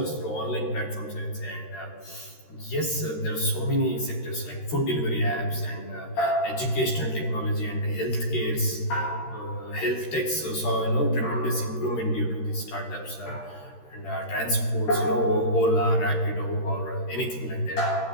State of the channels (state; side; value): late; right; 13 ms